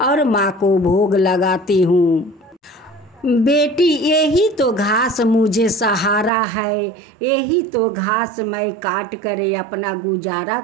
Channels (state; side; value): drops out; left; at 6.3 s